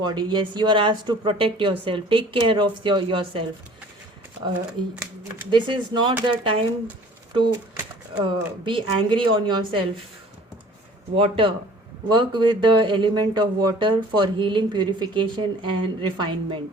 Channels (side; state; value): both; normal; correlation 0.50